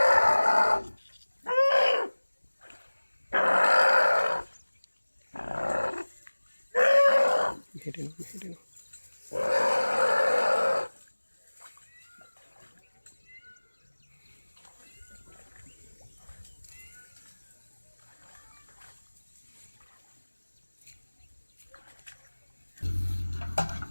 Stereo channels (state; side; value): inverted; both; correlation -1.00